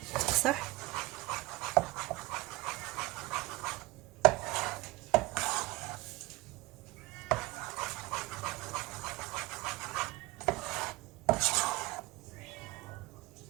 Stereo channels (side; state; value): left; quieter; 21.1 dB